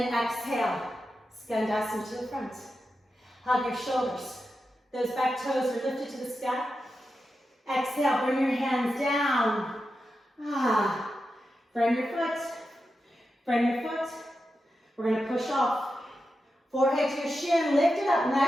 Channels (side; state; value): both; normal; correlation 0.90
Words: exhale. Skandasana to the front. Hug your shoulders. Those back toes are lifted to the sky. Exhale, bring your hands down. Frame your foot. Frame your foot. We're going to push off. Forehead to your shin. Lift it up